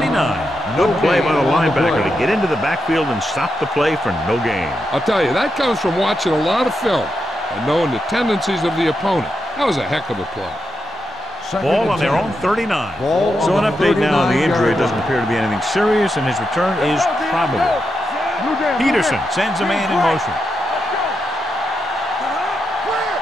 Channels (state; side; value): normal; both; correlation 0.85